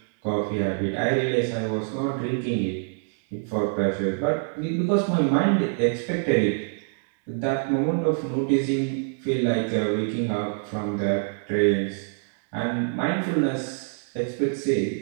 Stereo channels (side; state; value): left; silent; 61 dB below the other